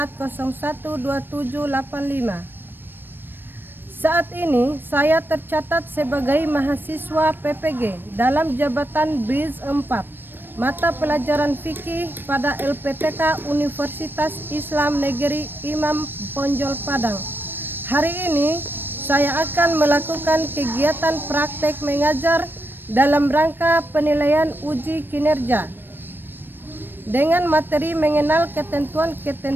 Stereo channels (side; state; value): left; late; 0.096 ms